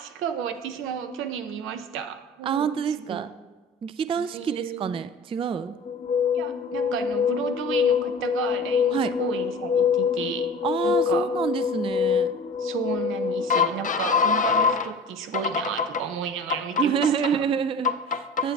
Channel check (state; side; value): normal; both; correlation 0.39